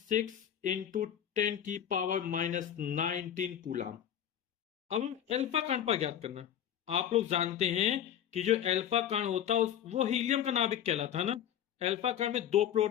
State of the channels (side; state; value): right; quieter; 10.1 dB